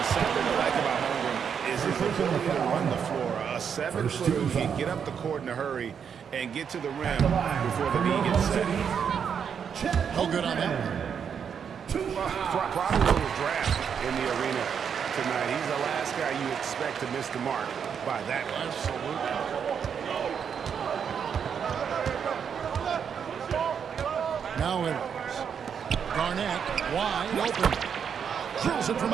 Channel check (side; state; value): left; quieter; 7.3 dB